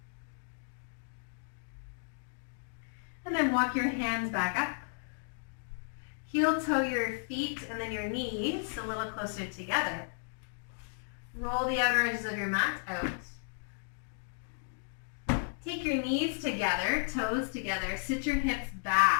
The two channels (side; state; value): right; silent; digital silence